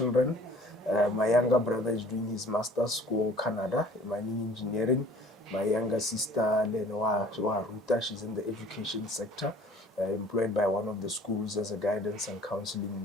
My younger brother is doing his master's school Canada, mining engineering. My younger sister, Lenoa Ruta, she's in the education sector, employed by one of the schools as a guidance and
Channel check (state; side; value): normal; both; correlation 0.51